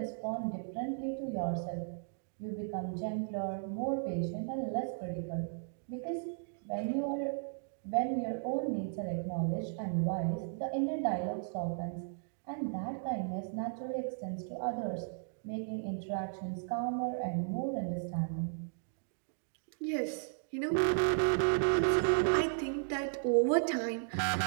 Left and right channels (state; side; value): silent; left; digital silence